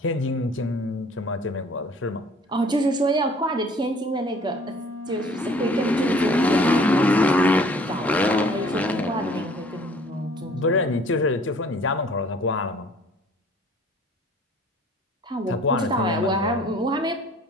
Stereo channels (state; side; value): normal; both; correlation 0.53